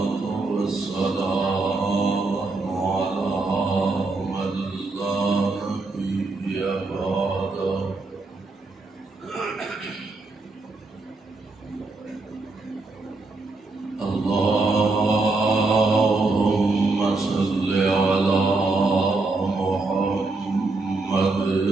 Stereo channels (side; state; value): left; quieter; 3.5 dB